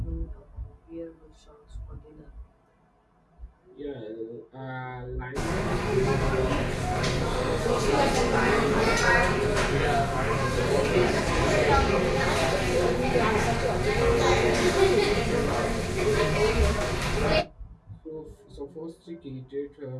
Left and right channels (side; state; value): both; identical; correlation 1.00